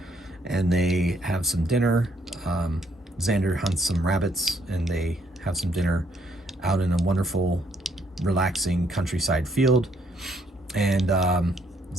and they have some dinner. Xander hunts some rabbits, and they have some dinner out in a wonderful, relaxing countryside field. And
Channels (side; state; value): both; normal; correlation 0.70